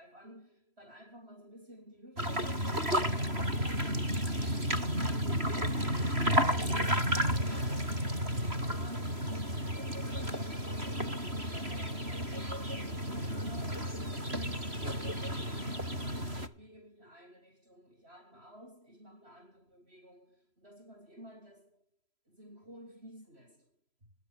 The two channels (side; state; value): left; late; 3.0 ms